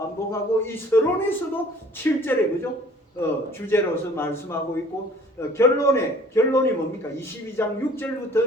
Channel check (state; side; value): normal; both; correlation 0.52